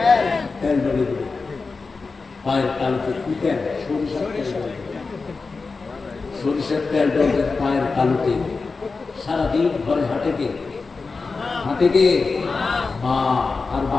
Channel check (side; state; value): right; quieter; 4.2 dB